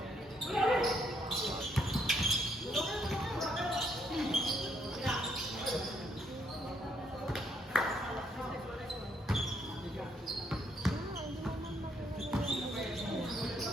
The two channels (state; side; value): normal; both; correlation 0.72